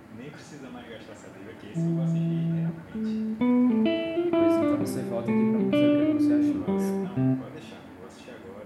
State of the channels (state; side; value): identical; both; correlation 1.00